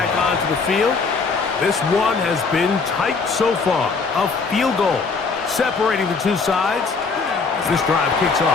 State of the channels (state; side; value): quieter; right; 4.6 dB